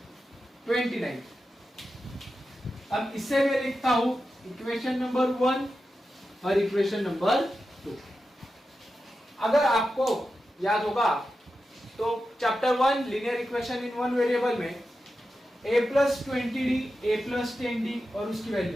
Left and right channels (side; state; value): both; normal; correlation 0.91